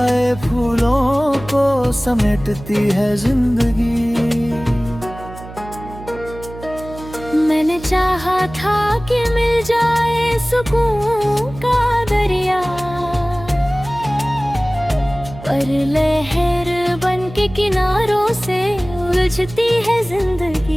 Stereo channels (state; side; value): noise; right; hum, 15 dB below the sound